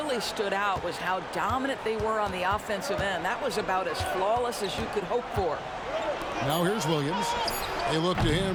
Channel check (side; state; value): both; identical; correlation 1.00